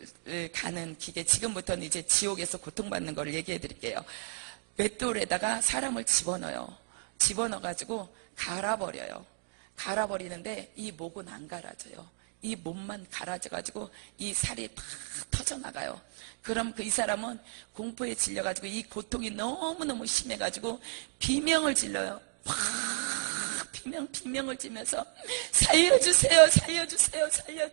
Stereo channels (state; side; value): silent; left; digital silence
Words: 가는 기계, 지금부터는 이제 지옥에서 고통받는 걸 얘기해 드릴게요. 맷돌에다가 사람을 집어넣어가지고 갈아버려요. 갈아버리는데 이 목은 안 갈아져요. 이 몸만 갈아져가지고 이 살이 팍 터져나가요. 그럼 이 사람은 공포에 질려가지고 이 고통이 너무너무 심해가지고 비명을 질러요. 비명을 지면서 살려주세요, 살려주세요,